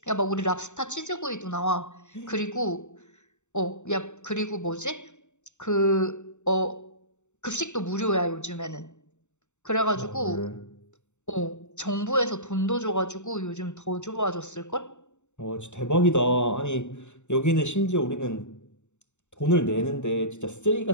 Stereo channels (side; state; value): right; late; 0.84 ms